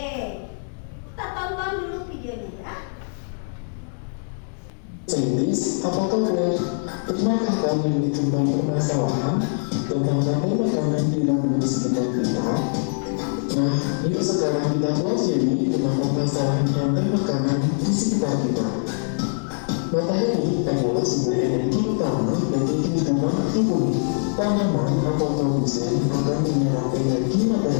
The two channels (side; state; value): right; silent; 62 dB below the other